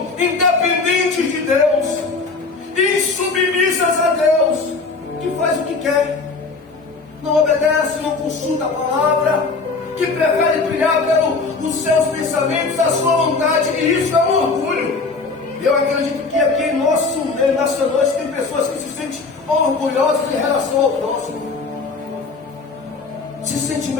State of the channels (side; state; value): right; quieter; 4.1 dB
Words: independentes de Deus, insubmissas a Deus, que faz o que quer, não obedece, não consulta a palavra, que prefere trilhar pelos seus pensamentos, a sua vontade, e isso é um orgulho. Eu acredito que aqui em nosso meio, nessa noite, tem pessoas que se sentem orgulhosas em relação ao próximo, se sente